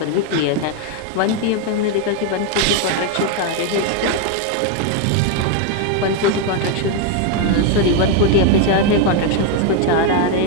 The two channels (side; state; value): both; different; correlation 0.01